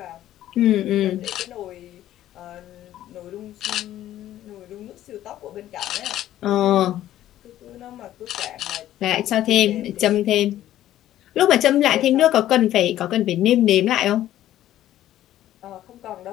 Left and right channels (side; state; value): right; quieter; 13.0 dB